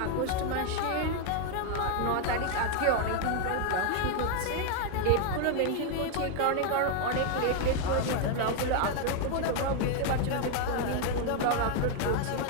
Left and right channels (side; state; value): both; different; correlation 0.01